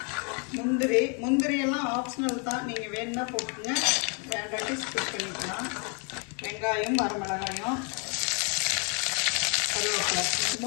முந்திரி எல்லாம் ஆப்ஷனல் தான். நீங்கள் வேணும்னா போட்டுங்க, வேண்டாட்டி ஸ்கிப் பண்ணிக்கலாம். வெங்காயம், வரமிளகாயம், கருவேப்பிலை,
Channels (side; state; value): right; quieter; 36.3 dB